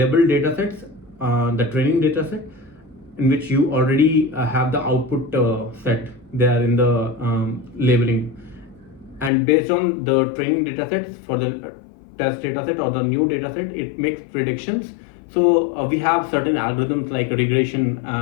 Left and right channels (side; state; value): right; drops out; at 9.3 s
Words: data sets, the training data set, in which you already have the output set there in the labeling, and based on the training data sets for the test data set or the new data set, it makes predictions. So we have certain algorithms like regression